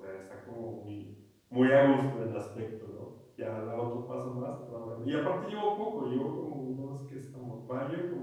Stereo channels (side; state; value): both; identical; correlation 1.00